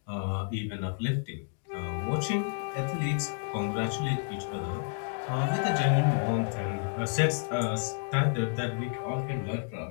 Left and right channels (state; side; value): silent; right; 57 dB below the other